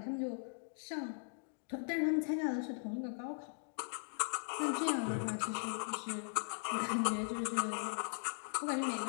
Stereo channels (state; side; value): silent; right; digital silence